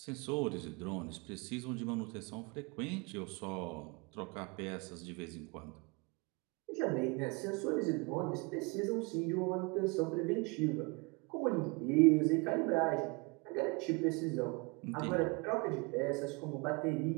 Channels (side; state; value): left; quieter; 29.2 dB